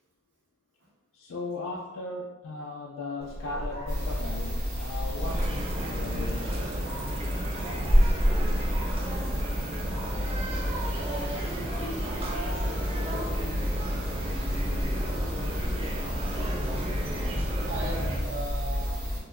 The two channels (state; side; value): normal; both; correlation 0.82